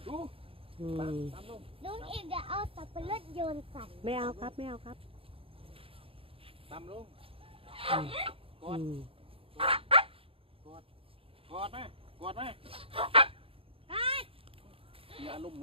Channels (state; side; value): late; left; 0.27 ms